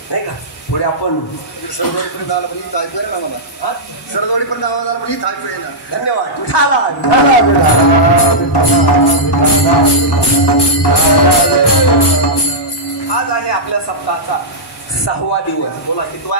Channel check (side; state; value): both; normal; correlation -0.09